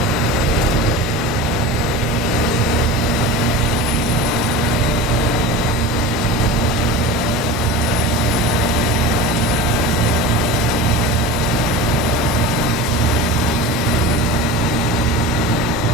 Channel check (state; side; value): normal; both; correlation 0.32